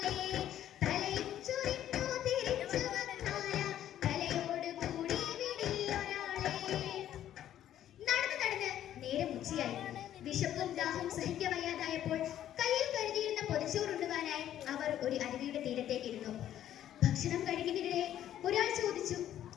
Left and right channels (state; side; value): quieter; right; 11.5 dB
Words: തലയും ചൊരിഞ്ഞു തിരിച്ചു വന്നാല തലയോട് കൂടി വിടിയൊരാളെ. നടന്ന് നടന്ന് നേരം ഉച്ചയായി. വിശപ്പും ദാഹവും സഹിക്കവയ്യാതായപ്പോൾ കയ്യിൽ കരുതിയിരുന്ന പൊതിച്ചോറുണ്ടുവാനായി അവർ ഒരു അരുവിയുടെ തീരത്തേക്ക് ഇരുന്നു. ഭക്ഷണം കഴിക്കുന്നതിനിടെ ഒരാൾ ചോദിച്ചു,